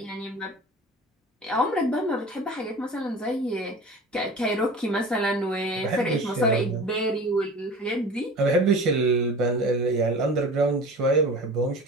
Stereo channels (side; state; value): both; normal; correlation 0.37